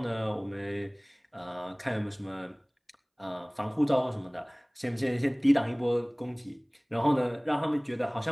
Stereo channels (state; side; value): identical; both; correlation 1.00